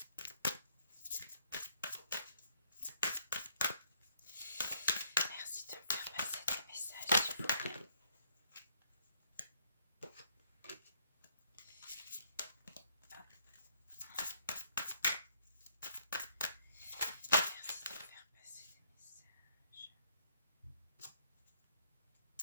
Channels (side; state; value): both; inverted; correlation -0.69